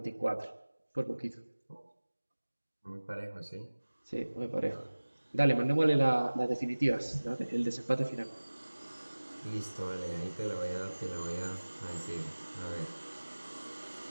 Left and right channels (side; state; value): both; inverted; correlation -1.00